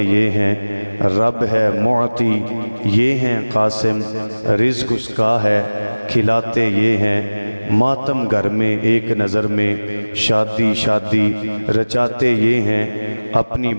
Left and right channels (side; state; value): both; inverted; correlation -1.00